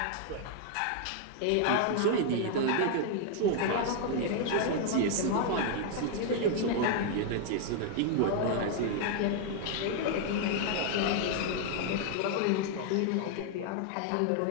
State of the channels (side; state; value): both; different; correlation 0.00